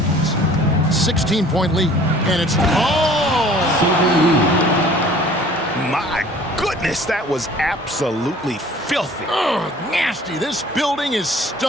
16-point lead. And it's My goodness, that was absolutely filthy. Ugh, nasty. This building is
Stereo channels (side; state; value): both; normal; correlation 0.50